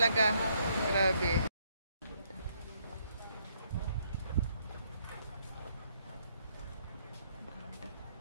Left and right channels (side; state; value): both; inverted; correlation -0.71